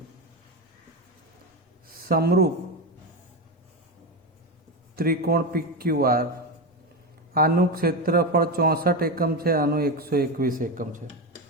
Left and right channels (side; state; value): both; normal; correlation 0.16